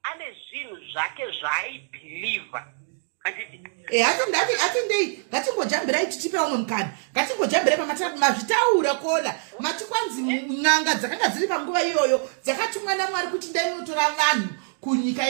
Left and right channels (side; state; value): left; silent; digital silence